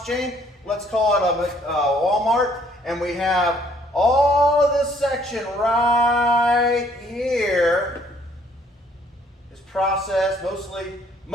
chain. Let's call it a Walmart. And we have all of this section right here is processed,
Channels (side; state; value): both; normal; correlation 0.63